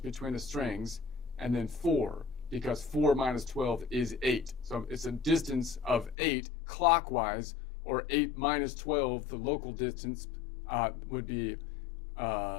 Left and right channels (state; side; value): drops out; right; at 6.2 s